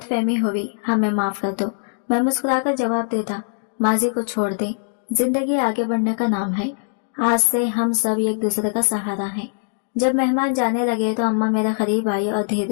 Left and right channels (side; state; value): right; silent; digital silence